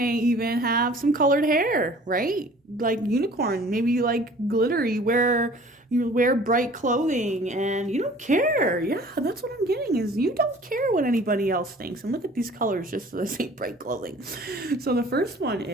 even have some colored hair, right? Like unicorn, maybe you like glitter, you wear bright clothing and you don't care. Yeah, that's what I'm getting, is you don't care what anybody else thinks. And look at these colors just so they say bright clothing. So the first one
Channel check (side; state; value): both; normal; correlation 0.49